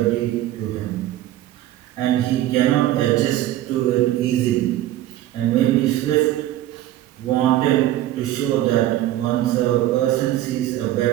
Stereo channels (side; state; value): left; quieter; 14.0 dB